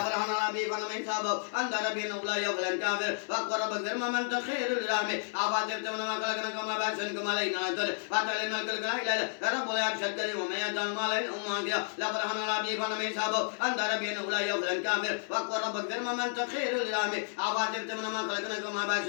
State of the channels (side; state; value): right; silent; digital silence